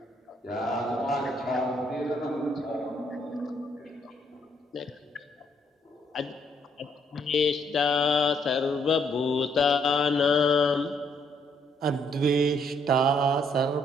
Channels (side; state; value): both; normal; correlation 0.70